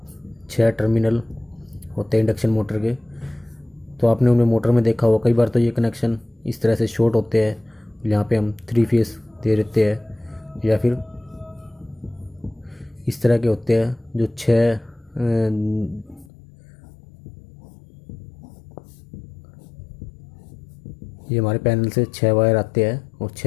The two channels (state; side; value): drops out; right; at 16.3 s